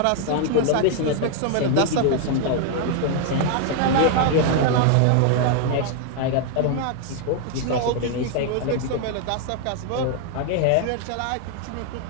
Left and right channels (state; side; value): different; both; correlation 0.00